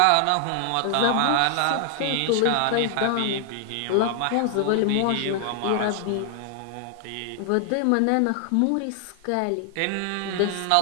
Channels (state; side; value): different; both; correlation 0.00